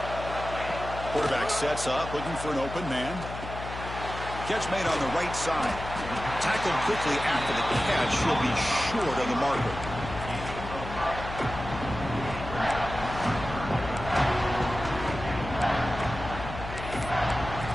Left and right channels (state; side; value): noise; left; hum, 9 dB below the sound